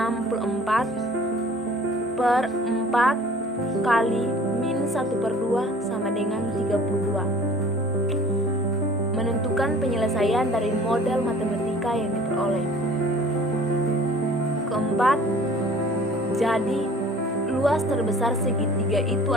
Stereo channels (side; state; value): both; normal; correlation 0.49